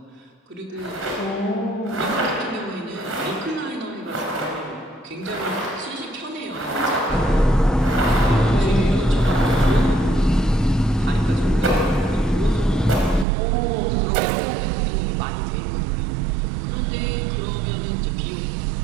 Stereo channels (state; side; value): drops out; left; at 13.2 s